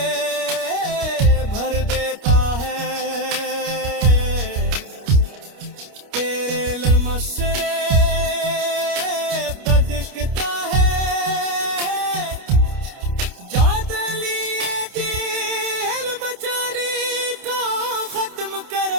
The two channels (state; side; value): late; left; 29 ms